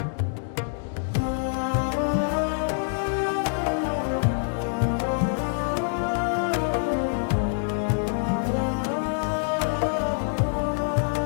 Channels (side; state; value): right; silent; digital silence